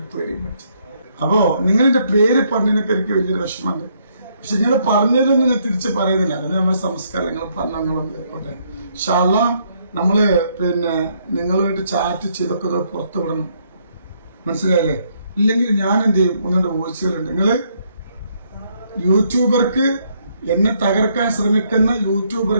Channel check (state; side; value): inverted; both; correlation -0.71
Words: പേടി വെച്ചു. അപ്പോ നിങ്ങളുടെ പേര് പറഞ്ഞതിനൊക്കെ എനിക്ക് വലിയൊരു വിഷമമുണ്ട്. പക്ഷെ നിങ്ങൾ പറഞ്ഞതൊന്നും ഞാൻ തിരിച്ച് പറയുന്നില്ല. അതിന് നമ്മുടെ സംസ്കാരം നിങ്ങൾ പറഞ്ഞോട്ടെ. ഇൻഷാ അല്ലാഹ് നമ്മള് പിന്നെ നിങ്ങളുമായിട്ട് ചാറ്റ് ചെയ്തൊക്കെ പുറത്തു വിടണം. മനസ്സിലായില്ലേ? ഇല്ലെങ്കിൽ ഞാൻ എന്ത് ചെയ്യും? 1-2 വോയിസുകളുണ്ട്. നിങ്ങള് യൂട്യൂബർക്ക് എന്നെ തകർക്കാൻ ശ്രമിക്കുന്ന